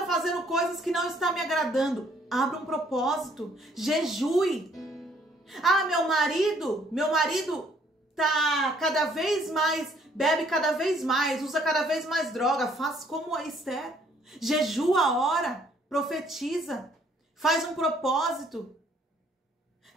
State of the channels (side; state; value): both; normal; correlation 0.63